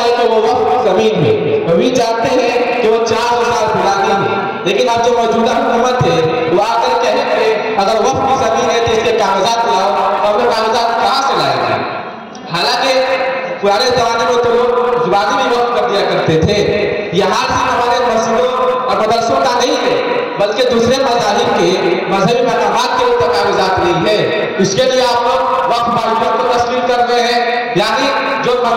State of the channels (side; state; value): both; identical; correlation 1.00